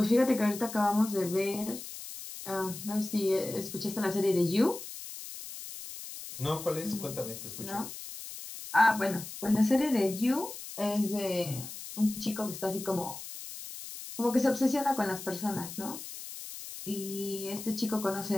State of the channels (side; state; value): left; noise; hiss, 11 dB below the sound